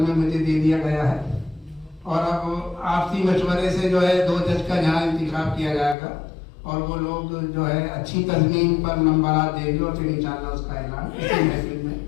मुझे दे दिया गया है। और अब आपसी मशवरे से जो है 2 जज का यहाँ इंतखाब किया जाएगा और वो लोग जो है अच्छी तज़मीन पर नंबरात देंगे और फिर इंशाअल्लाह उसका ऐलान इसी महफिल में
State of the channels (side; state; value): right; drops out; at 6.0 s